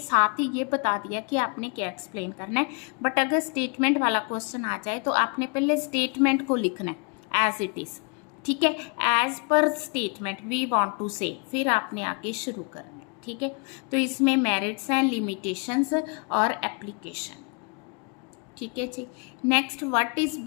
ही ये बता दिया कि आपने क्या एक्सप्लेन करना है, बट अगर स्टेटमेंट वाला क्वेश्चन आ जाए तो आपने पहले स्टेटमेंट को लिखना है एज इट इज। ठीक है, as per statement we want to से, फिर आपने आगे शुरू करना है। ठीक है, तो इसमें मेरिट्स हैं, लिमिटेशंस और एप्लीकेशन। ठीक है जी, next what is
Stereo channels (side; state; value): right; quieter; 33.9 dB